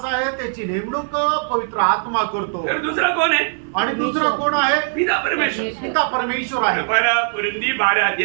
आहे त्याची नेमणूक पवित्र आत्मा करतो फिर दूसरा कौन है आणि दुसरं कोण आहे पिता परमेश्वर पिता परमेश्वर आहे पहला कुरिन्दी 12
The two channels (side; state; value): left; silent; 57 dB below the other